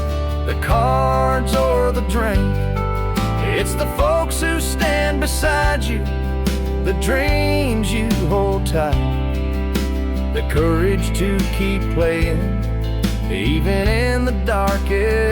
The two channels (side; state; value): both; identical; correlation 1.00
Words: the cards or the drink. It's the folks who stand beside you, the dreams you hold tight, the courage to keep playing even in the